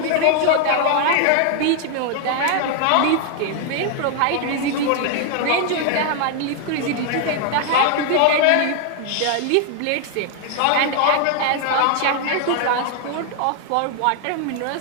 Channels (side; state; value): both; different; correlation 0.00